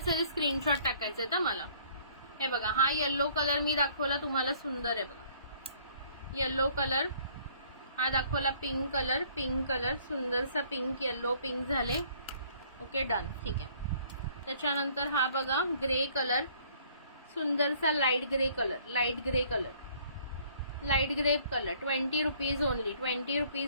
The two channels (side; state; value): both; inverted; correlation -0.59